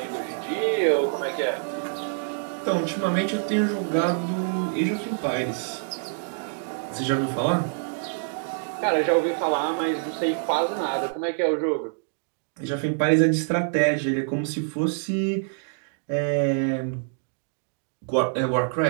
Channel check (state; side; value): silent; left; digital silence